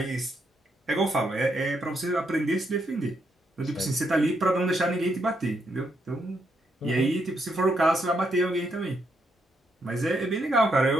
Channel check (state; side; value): normal; both; correlation 0.78